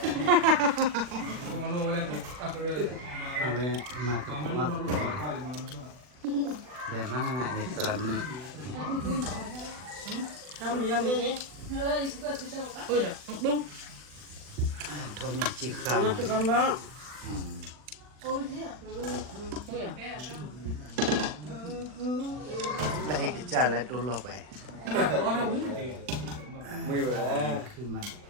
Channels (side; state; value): left; late; 40 ms